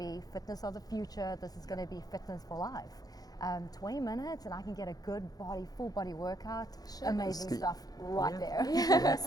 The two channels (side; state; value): right; late; 0.18 ms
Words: fitness of the future. This is going to be fitness for life. 20 minutes and I can get a good full body workout. Amazing stuff right there.